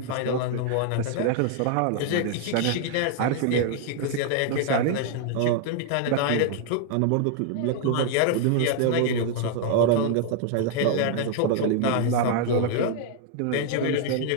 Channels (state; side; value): different; both; correlation 0.00